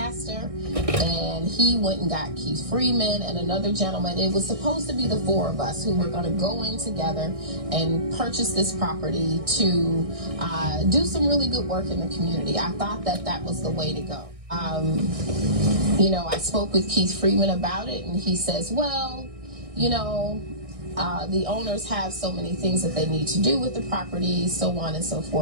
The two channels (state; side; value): late; left; 1.6 ms